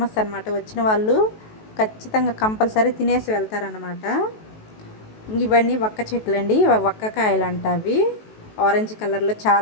అనమాట. వచ్చిన వాళ్ళు ఖచ్చితంగా కంపల్సరీ తినేసి వెళ్తారనమాట. ఇవన్నీ వక్క చెట్లు అండి, వక్కకాయలు అంట. అవి ఆరెంజ్ కలర్లో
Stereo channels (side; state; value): right; late; 19 ms